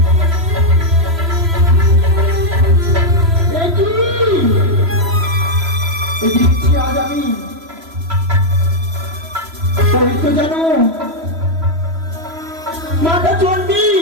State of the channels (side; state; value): left; late; 3.0 ms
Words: আজ আমি তো জানো মাতা চণ্ডী